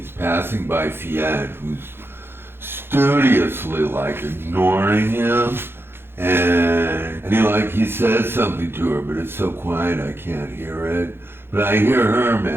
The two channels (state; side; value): late; left; 0.11 ms